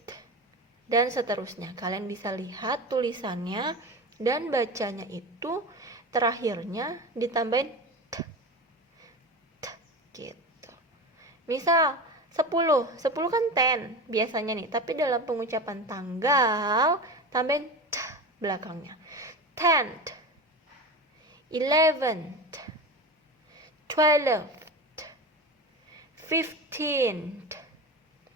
Dan seterusnya. Kalian bisa lihat tulisannya dan bacanya itu terakhirnya ditambahin t gitu. Misal 10 kan 10 biasanya nih, tapi dalam pengucapan tanggal tambahin t belakangnya. 10th, 11th, 12th, 15th,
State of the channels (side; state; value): both; normal; correlation 0.27